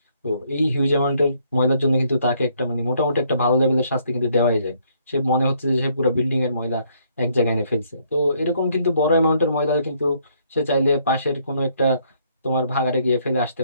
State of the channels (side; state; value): both; inverted; correlation -0.69